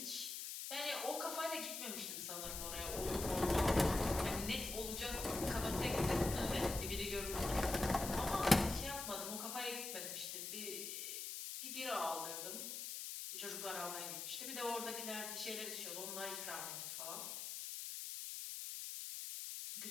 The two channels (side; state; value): left; noise; hiss, 5 dB below the sound